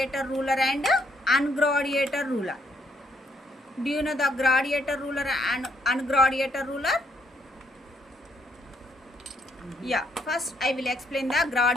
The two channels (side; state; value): both; normal; correlation 0.72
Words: ruler and ungradiator ruler. Do you know the gradiator ruler and ungradiator ruler? Yeah, first I will explain the